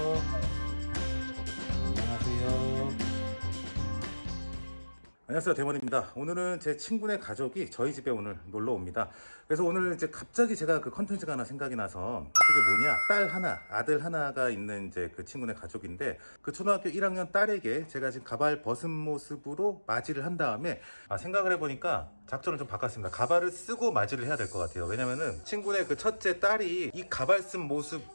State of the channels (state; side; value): inverted; both; correlation -1.00